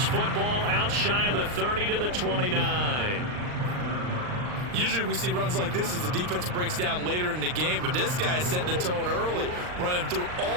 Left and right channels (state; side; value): late; left; 39 ms